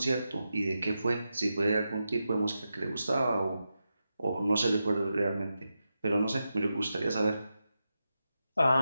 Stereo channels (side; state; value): both; inverted; correlation -0.89